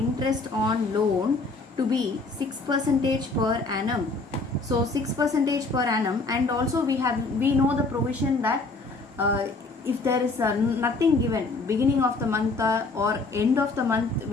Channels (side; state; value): right; quieter; 3.6 dB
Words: on loan to be 6% per annum. So 6% per annum, and also we know the provision that if there is nothing given, beginning of the month or end of the month